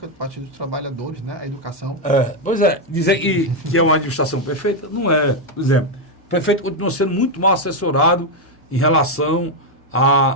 do Partido dos Trabalhadores, né? A educação. Pois é, dizer que é uma administração perfeita, não é. Por exemplo, o prefeito continua sendo muito mal assessorado em relação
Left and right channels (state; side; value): normal; both; correlation 0.03